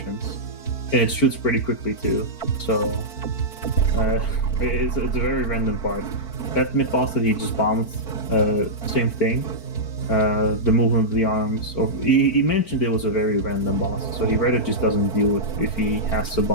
And it shoots pretty quickly too. So it's a very random part. That mid boss that he just bombed, same thing. The movement of the arms. Or he mentioned it was a very random boss, so he rather just doesn't deal with if he has to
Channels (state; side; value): late; right; 4.5 ms